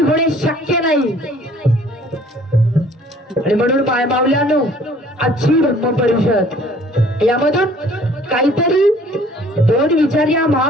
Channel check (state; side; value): normal; both; correlation 0.55